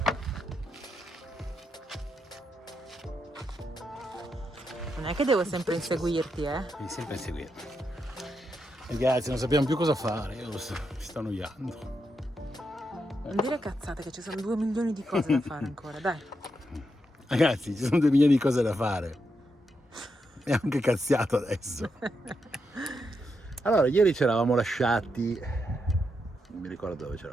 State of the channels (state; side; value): normal; both; correlation 0.83